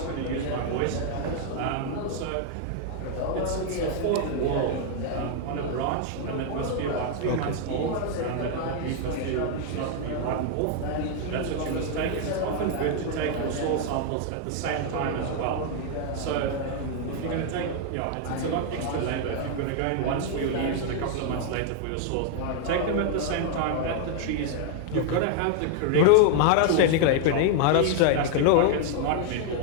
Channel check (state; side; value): different; both; correlation 0.00